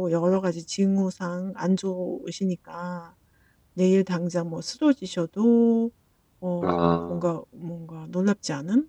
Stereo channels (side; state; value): both; identical; correlation 1.00